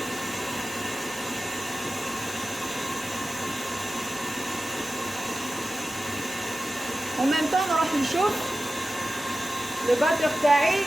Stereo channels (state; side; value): normal; both; correlation 0.94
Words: en même temps نروح نشوف لو باتور